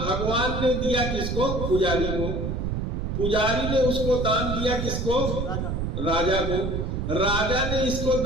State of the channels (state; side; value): noise; right; rumble, 2 dB below the sound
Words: भगवान ने दिया किसको? पुजारी को। पुजारी ने उसको दान दिया किसको? राजा को। राजा ने इसको